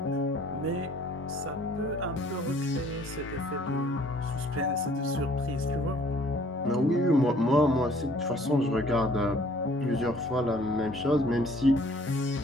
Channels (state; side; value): normal; both; correlation 0.57